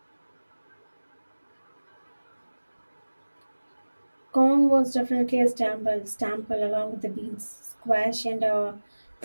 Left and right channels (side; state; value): both; inverted; correlation -1.00